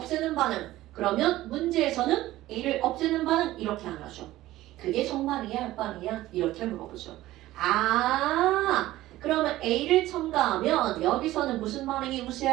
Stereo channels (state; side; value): quieter; left; 16.0 dB